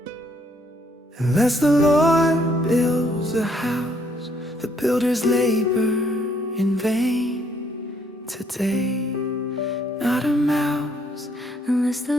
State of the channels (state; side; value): normal; both; correlation 0.68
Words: Unless the Lord builds a house, the builders labor in vain today. Not a mouse, unless the